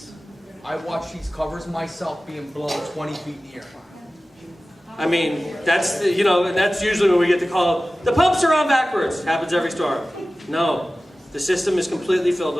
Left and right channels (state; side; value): normal; both; correlation 0.96